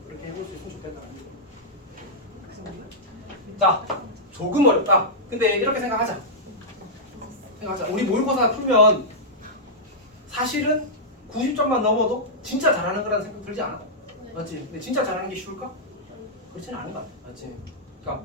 그렇게 해볼 수 있으면 좋겠다는 얘기. 자, 조금 어렵다. 근데 이렇게 생각하자. 우리 모의고사 풀면 사실은 90점만 넘어도 진짜 잘하는 거라는 생각 들지 않아? 맞지? 근데 진짜 잘하는 게 쉬울까? 그렇지는 않은 것 같아. 맞지?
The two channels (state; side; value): normal; both; correlation -0.10